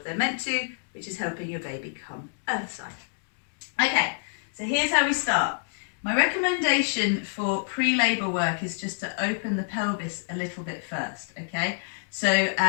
they're meant to, which is helping your baby come earthside. Okay, so here's how we start. My recommendation for pre-labour work is just to open the pelvis a little bit first, okay? So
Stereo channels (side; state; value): right; silent; digital silence